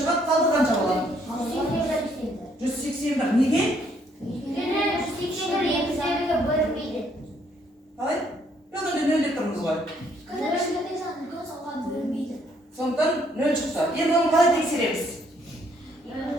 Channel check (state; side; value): normal; both; correlation 0.67